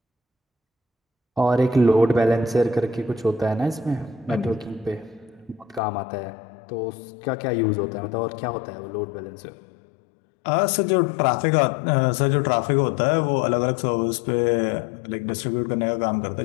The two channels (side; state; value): right; drops out; at 5.8 s